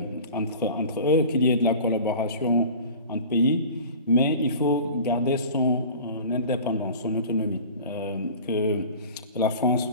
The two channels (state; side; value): inverted; both; correlation -0.39